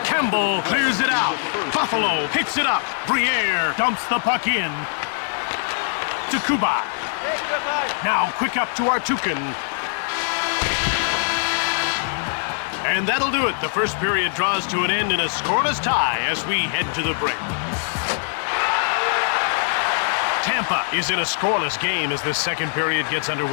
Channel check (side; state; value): right; silent; digital silence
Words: Campbell clears it out. Buffalo picks it up. Briere dumps the puck in. To Kuba. Now quick up to Artukin. And that'll do it. The first period draws to an end in a scoreless tie as we head to the break. Tampa is in a scoreless game as the second period gets